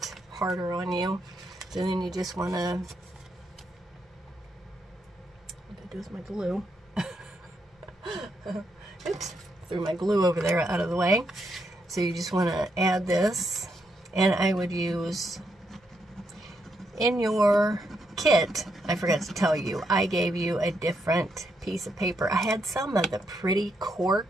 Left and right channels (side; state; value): both; normal; correlation 0.79